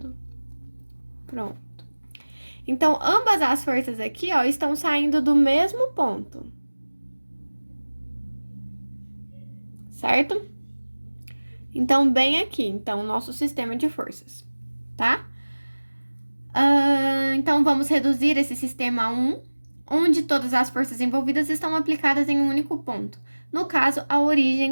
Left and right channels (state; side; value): inverted; both; correlation -1.00